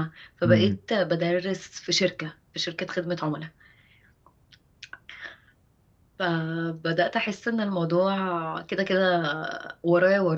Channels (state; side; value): identical; both; correlation 1.00